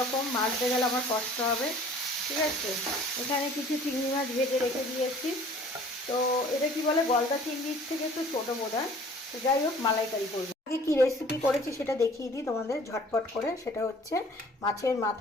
মাছতে গেলে আমার কষ্ট হবে, ঠিক আছে। এখানে কিছু চিংড়ি মাছ ভেজে রেখে দিয়েছি। তো এটা কি বলে, গলদা চিংড়ির থেকে একটু ছোটো বোধ হয়। তো যাই হোক, মালাইকারি করবো। আগে কী রেসিপি করেছি সেটা দেখিয়ে দিই তোমাদের ঝটপট করে। সেটা হচ্ছে মাছের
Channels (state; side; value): normal; both; correlation 0.51